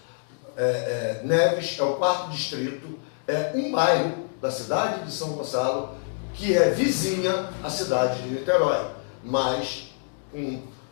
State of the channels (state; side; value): silent; right; digital silence